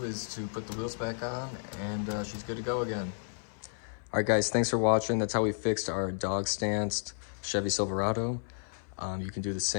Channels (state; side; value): silent; right; 56 dB below the other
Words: is to put the wheels back on, and she's good to go again. All right, guys, thanks for watching. That's how we fixed our dog-stanced Chevy Silverado. You can do the